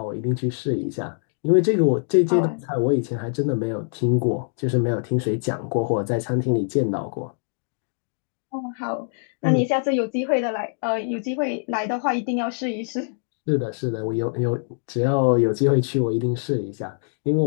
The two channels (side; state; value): right; silent; digital silence